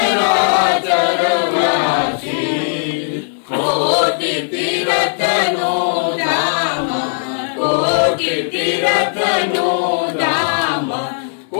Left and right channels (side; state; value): right; silent; 66 dB below the other